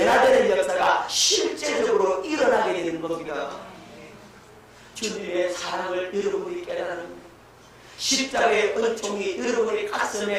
역사가 실제적으로 일어나게 되는 겁니다. 주님의 사랑을 여러분이 깨달은 십자가의 은총이 여러분의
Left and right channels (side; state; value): both; identical; correlation 1.00